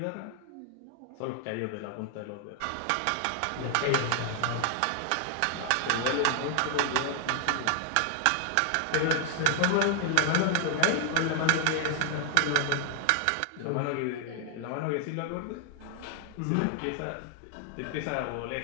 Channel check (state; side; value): different; both; correlation 0.00